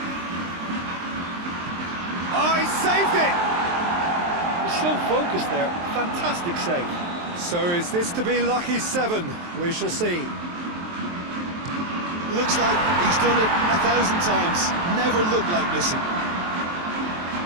Oh, he saved it! He's so focused there. Fantastic save. So is this to be lucky 7? We shall see. Looks like he's done it 1,000 times. Never looked like missing.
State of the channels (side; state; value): left; late; 23 ms